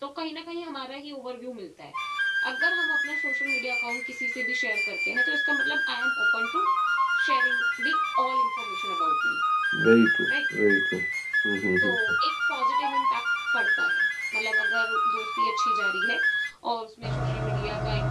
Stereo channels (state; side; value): identical; both; correlation 1.00